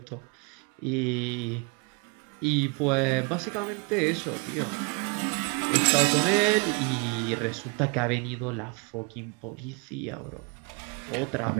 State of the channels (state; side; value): quieter; left; 33.2 dB